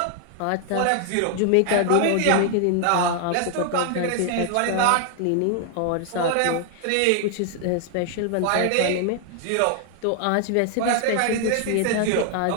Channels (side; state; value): both; different; correlation 0.00